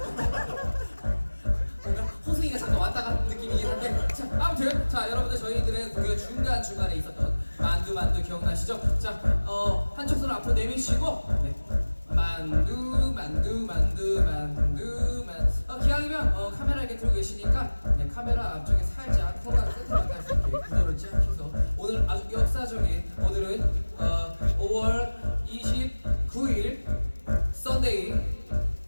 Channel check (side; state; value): both; inverted; correlation -1.00